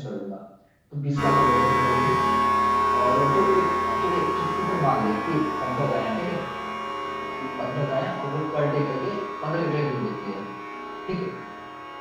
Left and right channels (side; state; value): both; identical; correlation 1.00